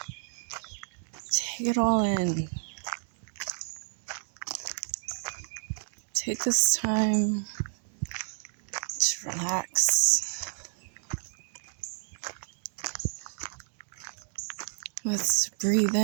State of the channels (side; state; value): left; silent; digital silence